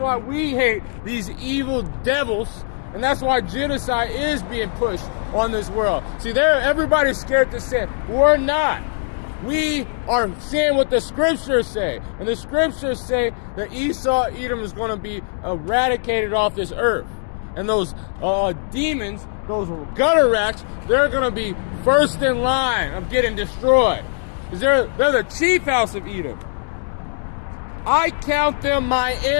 we hate these evil devils, and that's why genocide is being pushed on this world. See, everybody's scared to sin. We're not. We are saying what the scriptures say, and the scriptures say that Esau, Edom is going to be eradicated off this earth, and those demons, those gutter rats, they're going to be first in line of getting destroyed. They're the chief house of Edom. I count them my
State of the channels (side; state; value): right; silent; digital silence